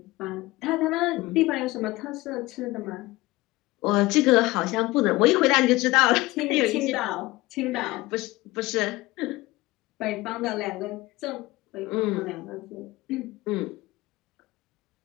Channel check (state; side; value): quieter; right; 19.7 dB